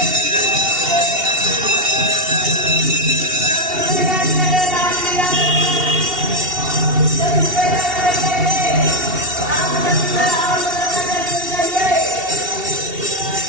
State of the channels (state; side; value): late; left; 2.7 ms